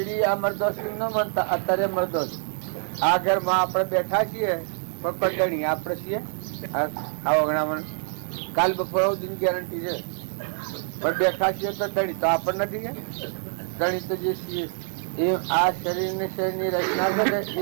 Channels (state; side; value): silent; left; digital silence